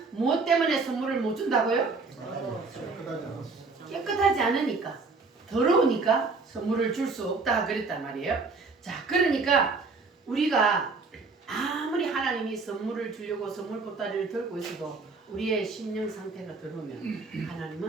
무엇 때문에 선물을 못 준다고요? 깨끗하지 않으니까 더러우니까 선물을 줄 수 없다 그랬단 말이에요. 자, 그러니까 우리가 아무리 하나님이 선물을 주려고 선물 보따리를 들고 있어도 우리의 심령 상태가 더러우면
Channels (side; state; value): left; quieter; 4.1 dB